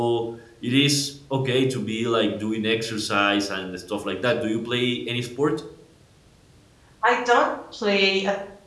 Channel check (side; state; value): both; identical; correlation 1.00